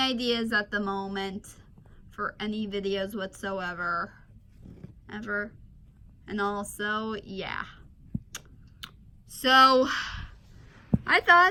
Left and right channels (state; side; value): identical; both; correlation 1.00